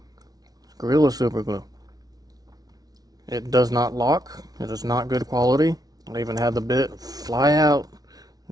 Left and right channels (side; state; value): left; late; 0.18 ms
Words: Gorilla super glue. It does not lock. It is not good quality. I even had the bit fly out